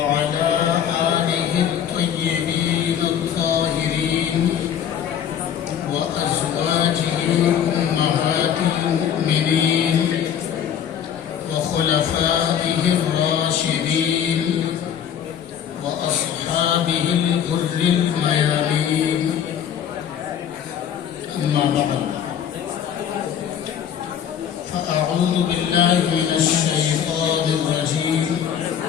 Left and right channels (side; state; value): right; quieter; 9.0 dB